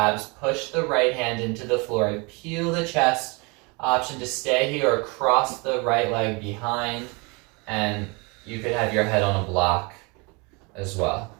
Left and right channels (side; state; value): left; quieter; 29.2 dB